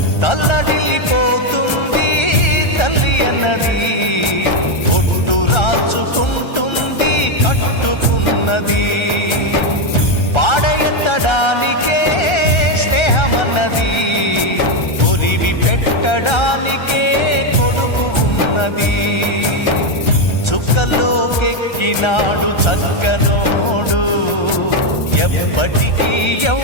తల్లడిల్లిపోతుంది తల్లి అన్నది, ఒట్టు రాచుకుంటుంది కట్టుకున్నది. పాడెత్తడానికే స్నేహమన్నది, కొరివి పెట్టడానికే కొడుకు ఉన్నది. చుక్కల్లోకెక్కినాడు చక్కనోడు, ఎప్పటికీ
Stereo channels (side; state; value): right; late; 1.3 ms